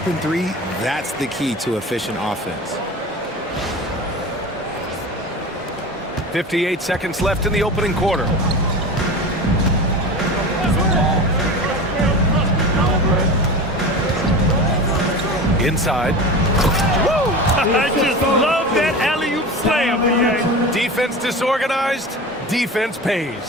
3, that's the key to efficient offense. 58 seconds left in the opening quarter. Inside. Woo! I just love that alley-oop slam. Defense disorganized. Defense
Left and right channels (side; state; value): both; normal; correlation 0.30